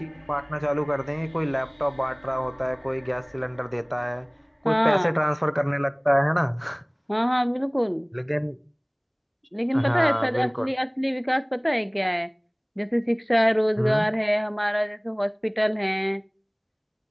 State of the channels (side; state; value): both; identical; correlation 1.00